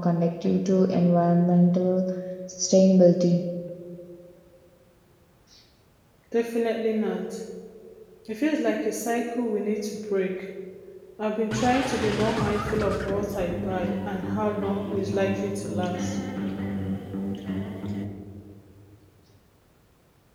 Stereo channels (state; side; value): identical; both; correlation 1.00